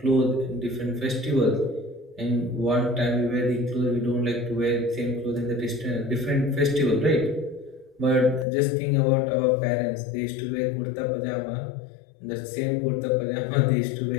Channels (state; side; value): drops out; right; at 8.5 s